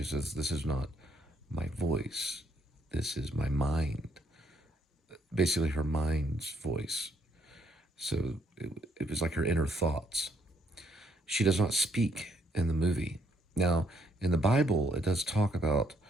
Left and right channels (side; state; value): both; normal; correlation 0.70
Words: says, this is not my voice. This is my mind. Basically her mind's voice. So it was like her inner thoughts. She does not speak in the movie. Now, in the Bible, it does talk about